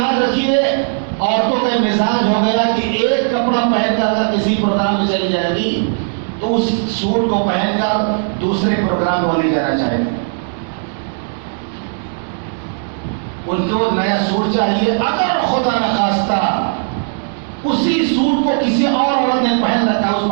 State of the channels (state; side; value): silent; left; digital silence